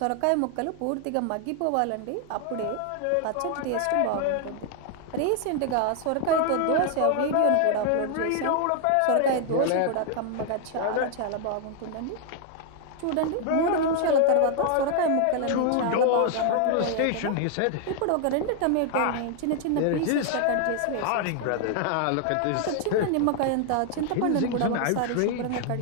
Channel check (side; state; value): both; different; correlation 0.00